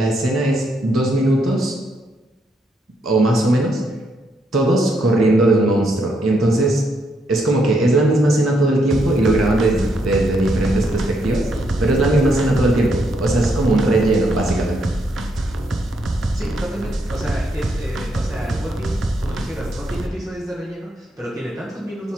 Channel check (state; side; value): normal; both; correlation 0.76